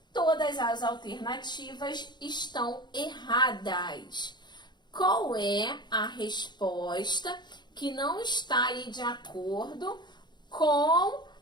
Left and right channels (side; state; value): right; late; 0.21 ms